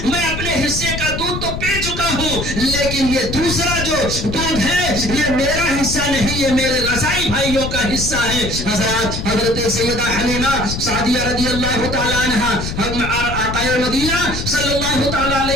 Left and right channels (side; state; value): left; noise; rumble, 5 dB below the sound